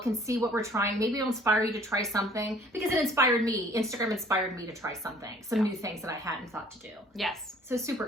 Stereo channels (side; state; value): both; normal; correlation 0.55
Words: and see what we're trying. Maybe it'll inspire you to try something because it inspired me. Instagram inspired me to try something, some new things that I hadn't thought to do. Yes. So super